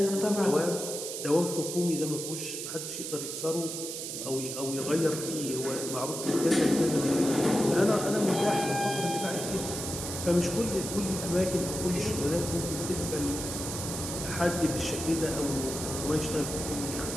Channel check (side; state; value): right; noise; hiss, 6 dB below the sound